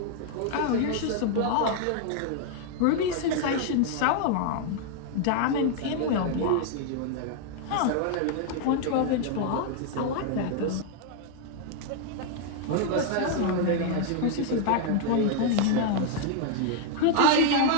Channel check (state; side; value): different; both; correlation 0.00